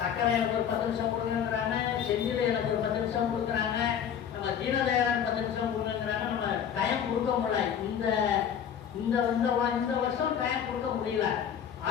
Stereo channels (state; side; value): quieter; right; 8.5 dB